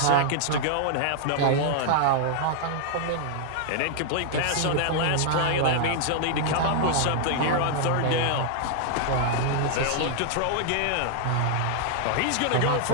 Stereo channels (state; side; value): different; both; correlation -0.01